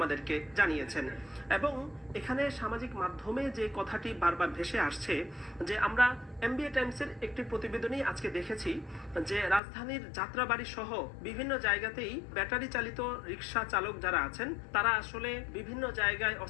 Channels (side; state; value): right; drops out; at 9.6 s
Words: জানিয়েছেন। এবং এখানে সামাজিক মাধ্যমে যে কথাটি বারবার ভেসে আসছে যে আমরা এমবিএ টাইমসের একটি প্রতিবেদনেই আজকে দেখেছি যে রাজধানীর যাত্রাবাড়ি সহ বিভিন্ন জায়গাতেই ব্যাটারি চালিত রিক্সা চালক যারা আছেন তারা আসলে বিভিন্ন জায়গায়